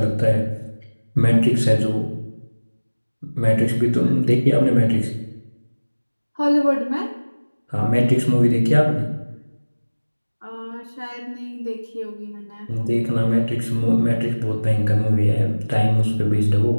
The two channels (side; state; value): both; inverted; correlation -1.00